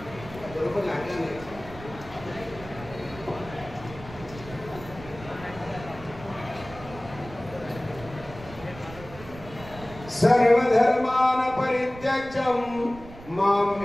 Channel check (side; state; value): right; noise; rumble, 16 dB below the sound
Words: बरोबर लागलं नाही। सर्वधर्मान परित्यज्य माम